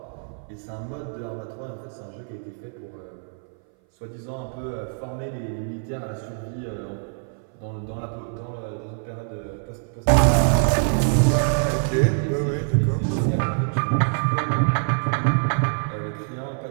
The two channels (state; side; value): silent; left; 58 dB below the other